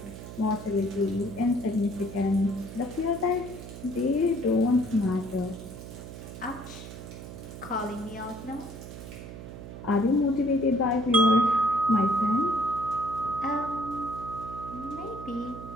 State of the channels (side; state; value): right; noise; hum, 12 dB below the sound